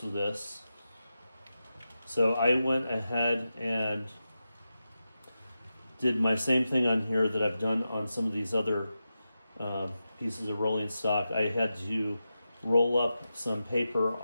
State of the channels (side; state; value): both; inverted; correlation -0.91